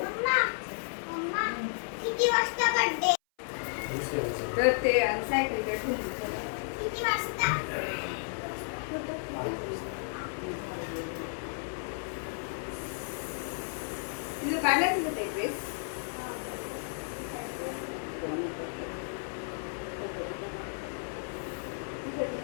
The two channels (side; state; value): right; silent; 56 dB below the other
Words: किती वाजता बर्थडे? तर ते सायकलकडे ठेवून किती वाजता? तुझं काढलं तुझं ते ड्रेस.